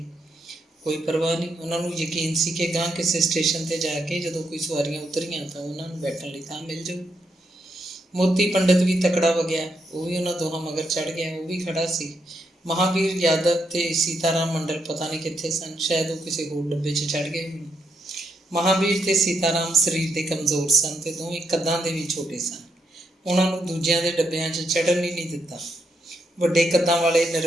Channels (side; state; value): both; normal; correlation 0.79